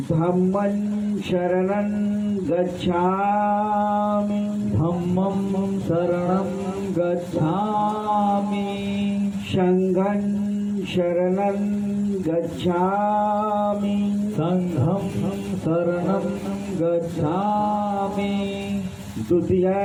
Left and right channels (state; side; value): identical; both; correlation 1.00